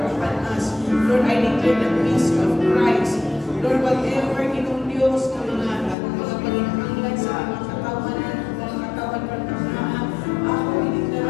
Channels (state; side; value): drops out; right; at 6.0 s